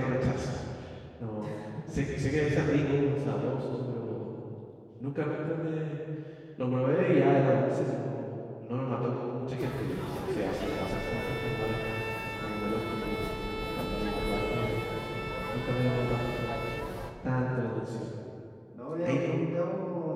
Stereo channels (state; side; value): identical; both; correlation 1.00